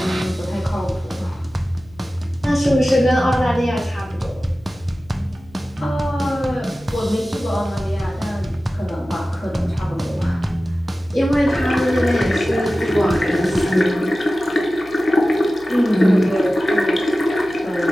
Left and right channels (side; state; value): left; noise; hum, 25 dB below the sound